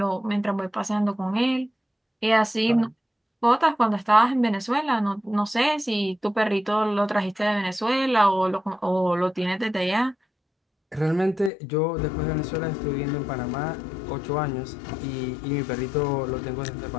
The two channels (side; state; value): right; drops out; at 11.5 s